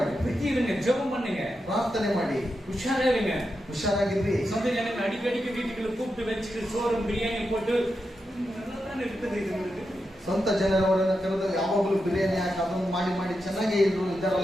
புத்தி இருங்க, ஜெபம் பண்ணுங்க, ಪ್ರಾರ್ಥನೆ ಮಾಡಿ, உஷாரா இருங்க, ಹುಷಾರಾಗಿರ್ರಿ. சொந்த ஜனங்க அடிக்கடிக்கு வீட்டுக்குள்ள கூப்பிட்டு வச்சுட்டு சோறும் பிரியாணி போட்டு நல்லா இருக்குது. இது உங்களுக்கு ಸ್ವಂತ ಜನರವರನ್ನ ಕರೆದು ಯಾವಾಗಲೂ ಬಿರಿಯಾನಿ ಹಾಕಿ ಅದನ್ನು ಮಾಡಿ ಮಾಡಿ ಚೆನ್ನಾಗಿ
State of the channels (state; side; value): normal; both; correlation 0.87